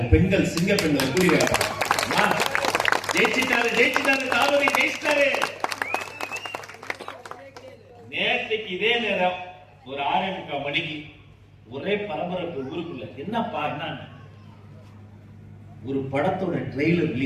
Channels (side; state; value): both; identical; correlation 1.00